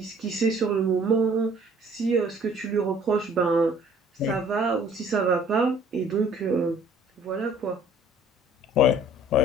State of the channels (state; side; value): normal; both; correlation 0.55